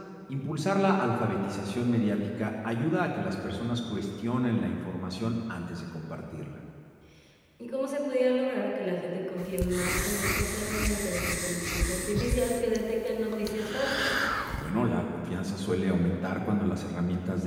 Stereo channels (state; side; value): identical; both; correlation 1.00